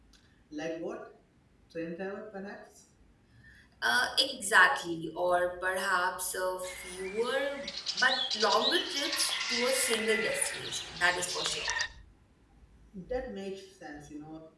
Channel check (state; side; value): identical; both; correlation 1.00